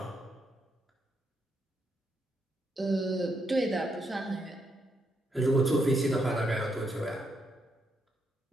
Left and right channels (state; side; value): normal; both; correlation 0.79